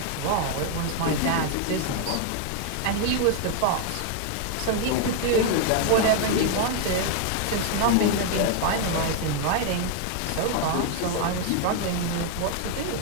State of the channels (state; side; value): different; both; correlation 0.00